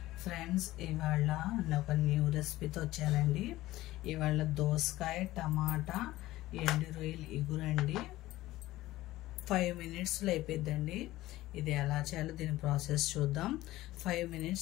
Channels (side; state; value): right; quieter; 16.8 dB